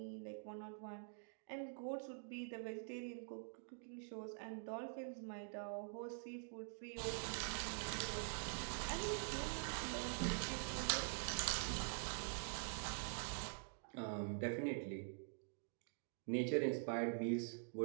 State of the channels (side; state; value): left; silent; digital silence